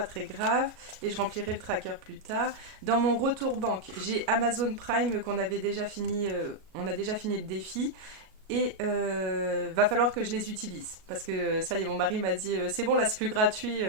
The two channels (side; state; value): left; late; 37 ms